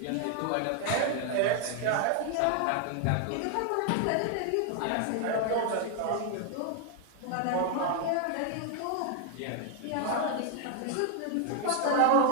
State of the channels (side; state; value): both; different; correlation 0.00